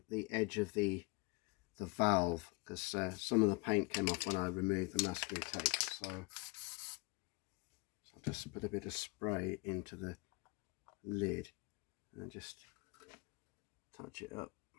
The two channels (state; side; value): quieter; right; 27.6 dB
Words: the edge of the valve, because some of the paint came off when I removed the masking tape. So I'll just put a bit of spray into the lid and just touch it up.